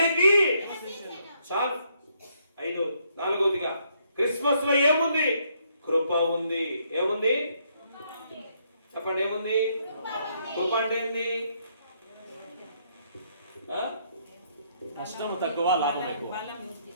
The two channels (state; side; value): inverted; both; correlation -0.72